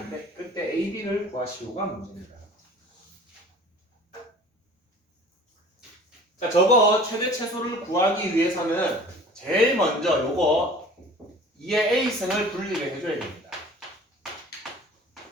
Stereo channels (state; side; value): normal; both; correlation 0.45